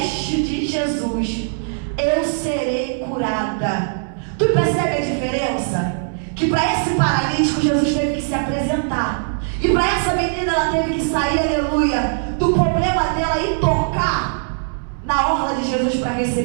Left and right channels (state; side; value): silent; left; digital silence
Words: de Jesus, eu serei curada. Tu percebe a diferença? Que para esse paralítico Jesus teve que se apresentar. E para essa menina ela teve que sair, aleluia, do problema dela e tocar na orla de Jesus para